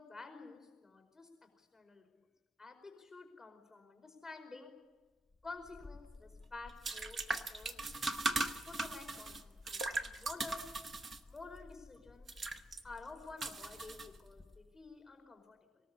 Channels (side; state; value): both; normal; correlation 0.82